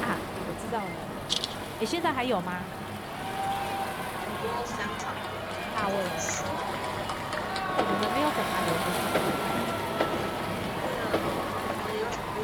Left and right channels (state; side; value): identical; both; correlation 1.00